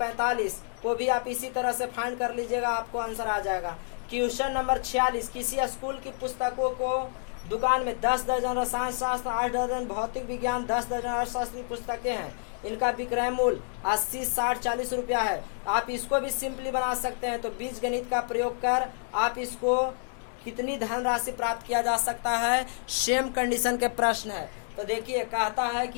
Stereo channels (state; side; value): silent; right; 58 dB below the other